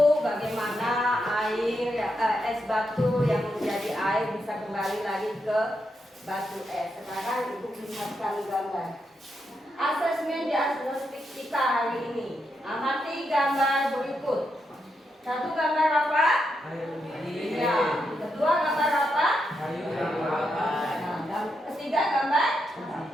bagaimana air, es batu yang menjadi air bisa kembali lagi ke batu es. Sekarang Ibu lihatkan gambar. Asesmen diagnostik kita hari ini. Amati gambar berikut. Satu gambar apa? Kayu lidi. Ya. Kedua gambar apa? Kayu rapat. Nah, dan ketiga gambar?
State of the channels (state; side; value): normal; both; correlation 0.83